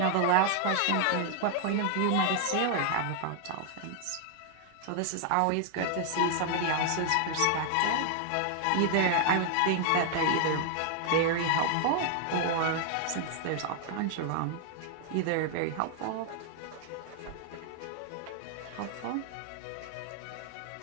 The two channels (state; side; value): different; both; correlation 0.00